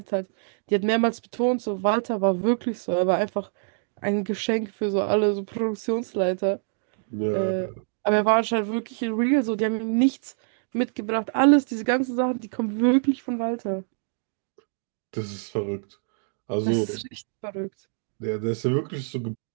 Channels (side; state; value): left; silent; digital silence